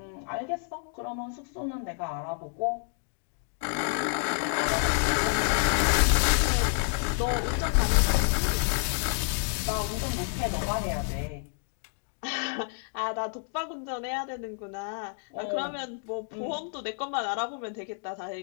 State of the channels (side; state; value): right; silent; 58 dB below the other